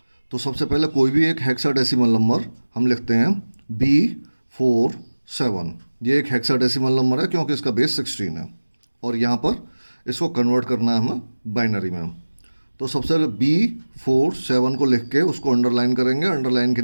तो सबसे पहले कोई भी एक हेक्साडेसिमल नंबर हम लिखते हैं B47। ये एक हेक्साडेसिमल नंबर है क्योंकि इसका बेस 16 है और यहाँ पर इसको कन्वर्ट करना है हमें बाइनरी में। तो सबसे पहले B47 को लिख के उसको अंडरलाइन करेंगे। अंडरलाइन के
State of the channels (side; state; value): both; inverted; correlation -1.00